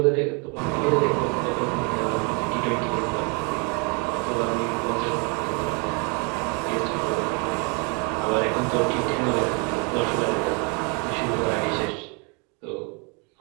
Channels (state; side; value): quieter; left; 33.9 dB